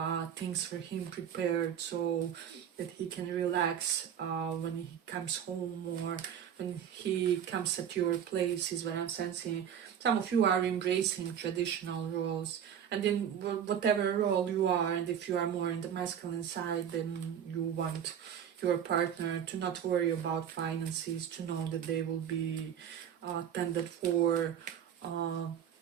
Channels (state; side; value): quieter; left; 8.9 dB